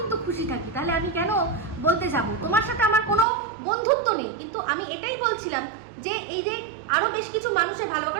খুশি থাকি, তাহলে আমি কেন বলতে যাব? তোমার সাথে আমার কোনো বন্ধুত্ব নেই, কিন্তু আমি এটাই বলছিলাম যে এই যে আরো বেশ কিছু মানুষের ভালো,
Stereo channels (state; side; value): drops out; left; at 3.2 s